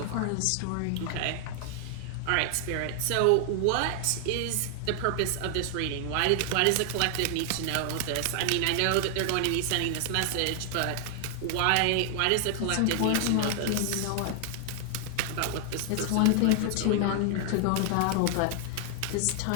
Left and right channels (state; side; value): different; both; correlation 0.00